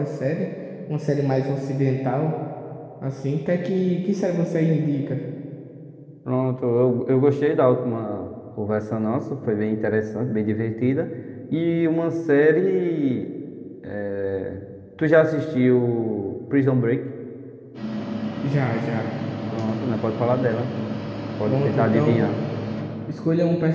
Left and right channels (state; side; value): identical; both; correlation 1.00